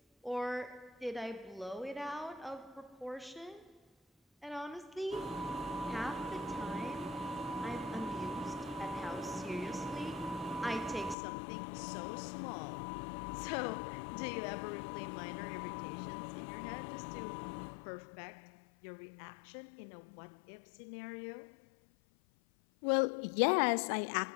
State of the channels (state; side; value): drops out; right; at 11.2 s